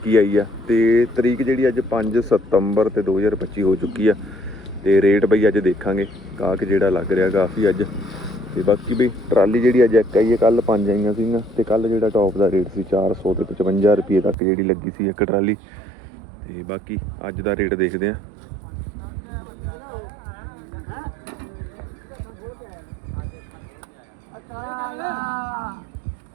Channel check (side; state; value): left; drops out; at 14.4 s